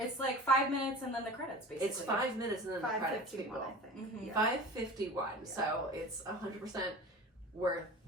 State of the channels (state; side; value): normal; both; correlation 0.37